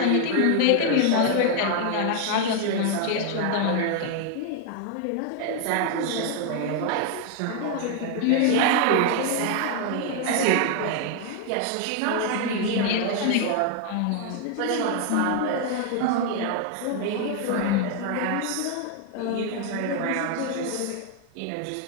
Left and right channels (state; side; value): different; both; correlation 0.00